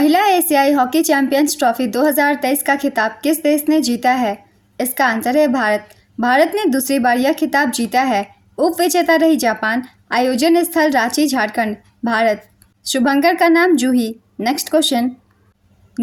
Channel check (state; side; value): identical; both; correlation 1.00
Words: एशियाई हॉकी चैंपियंस ट्रॉफी 2023 का खिताब किस देश ने जीता है? इसका आंसर है भारत। भारत ने दूसरी बार यह खिताब जीता है। उप विजेता रही जापान। आयोजन स्थल रांची झारखंड भारत। शुभंकर का नाम जूही। नेक्स्ट क्वेश्चन,